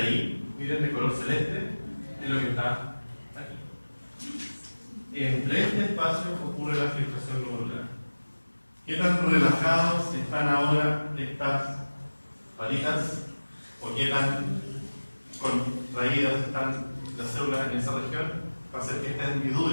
miren de color celeste, es lo que está aquí. Entre este espacio ocurre la filtración glomerular. ¿Qué tan relajados están ahora estas patitas? ¿O qué tan contraídas están las células en esa región? Va a hacer que esta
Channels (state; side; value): inverted; both; correlation -1.00